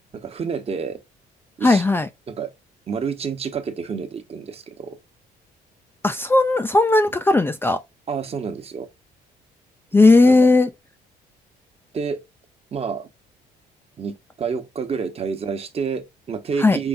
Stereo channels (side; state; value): both; normal; correlation 0.85